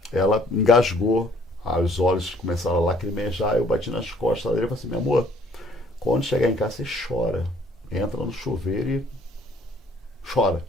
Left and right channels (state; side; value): normal; both; correlation 0.60